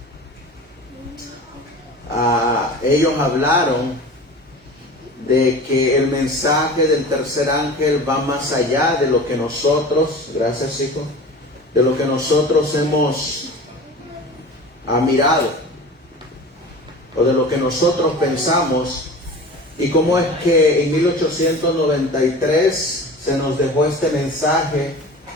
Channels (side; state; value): both; normal; correlation 0.36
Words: ellos hablaron de que el mensaje del tercer ángel va más allá de lo que nosotros, gracias hijo, de lo que nosotros hemos mirado, o de lo que nosotros pensamos, y cómo es que en 1893 se nos dejó este mensaje,